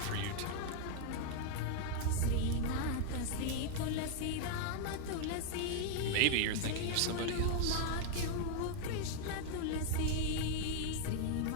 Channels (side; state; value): both; different; correlation 0.00